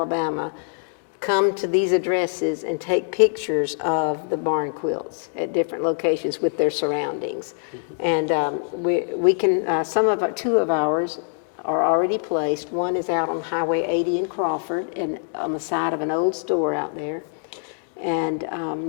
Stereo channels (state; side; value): silent; right; digital silence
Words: come to these addresses and take pictures of the barn quilts at different locations with their surroundings. And we can, two of ours are already placed. One is out on Highway 80 in Crawford, and on the side of an old store out there. And